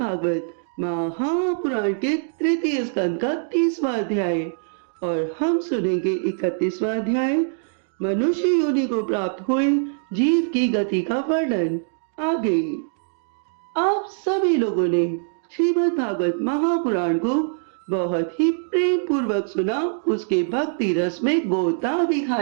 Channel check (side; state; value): left; silent; digital silence